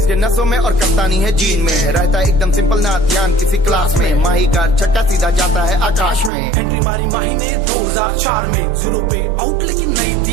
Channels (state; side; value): drops out; left; at 6.3 s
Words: नसों में और कप्तानी है जीन में। रहता एकदम सिंपल ना ध्यान किसी क्लास में, माही का छक्का सीधा जाता है आकाश में। एंट्री मारी माही ने 2004 में, 0 पे आउट लेकिन नहीं